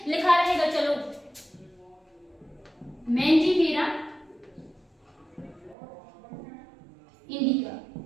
लिखा रहेगा चलो मैंजीफेरा इंडिका,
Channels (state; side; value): drops out; left; at 5.8 s